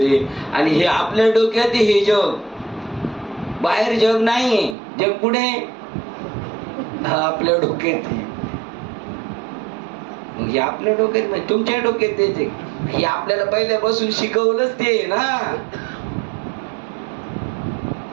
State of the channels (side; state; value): left; drops out; at 4.8 s